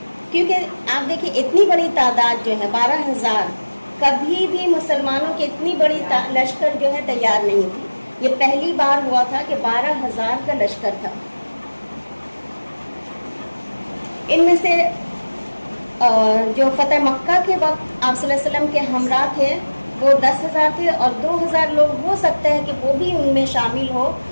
کیونکہ آپ دیکھیں اتنی بڑی تعداد جو ہے 12,000، کبھی بھی مسلمانوں کی اتنی بڑی لشکر جو ہے تیار نہیں تھی۔ یہ پہلی بار ہوا تھا کہ 12,000 کا لشکر تھا. ان میں سے جو فتح مکہ کے وقت آپ صلی اللہ علیہ وسلم کے ہمراہ تھے وہ 10,000 تھے، اور 2,000 لوگ ہو سکتا ہے کہ وہ بھی ان میں شامل ہو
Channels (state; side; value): inverted; both; correlation -1.00